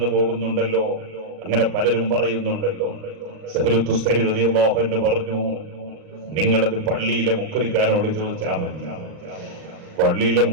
പോകുന്നുണ്ടല്ലോ, അങ്ങനെ പലരും പറയുന്നുണ്ടല്ലോ. സഹ്ലു തുസ്തരി റളിയല്ലാഹു അൻഹു പറഞ്ഞു, നിങ്ങളത് പള്ളിയിലെ മുക്കരിക്കാനോട് ചോദിച്ചാൽ മതി. പള്ളിയിലെ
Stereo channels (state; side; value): late; left; 39 ms